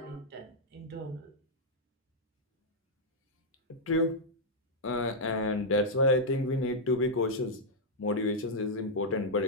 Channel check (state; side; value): normal; both; correlation -0.06